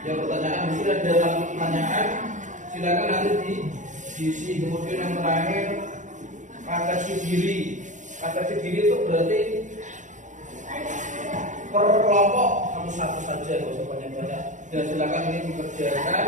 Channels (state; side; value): late; left; 0.36 ms